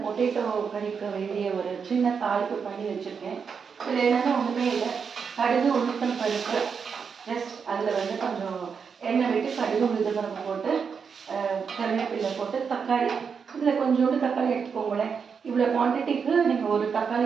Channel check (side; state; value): left; quieter; 6.1 dB